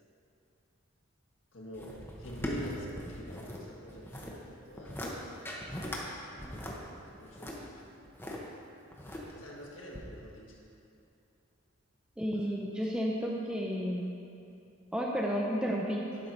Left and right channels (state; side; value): normal; both; correlation 0.70